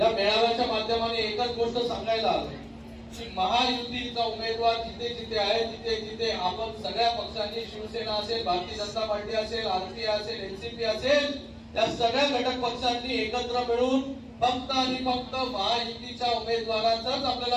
मेळाव्याच्या माध्यमाने एकच गोष्ट सांगायला आलो की महायुतीचा उमेदवार जिथे जिथे आहे तिथे तिथे आपण सगळ्या पक्षांनी, शिवसेना असेल, भारतीय जनता पार्टी असेल, RPI असेल, NCP असेल, या सगळ्या घटक पक्षांनी एकत्र मिळून फक्त आणि फक्त महायुतीच्या उमेदवाराचंच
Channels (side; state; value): both; identical; correlation 1.00